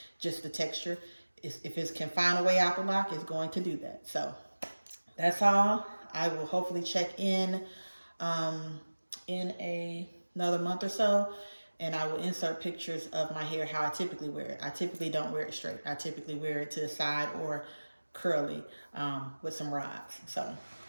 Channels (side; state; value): both; inverted; correlation -1.00